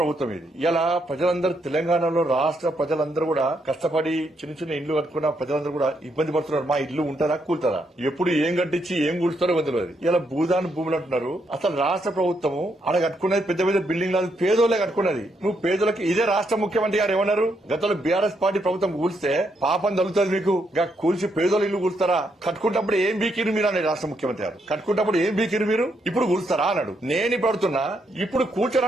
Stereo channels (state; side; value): normal; both; correlation 0.77